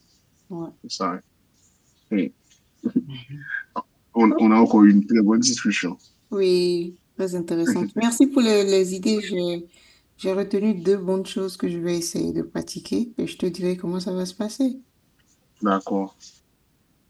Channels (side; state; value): both; identical; correlation 1.00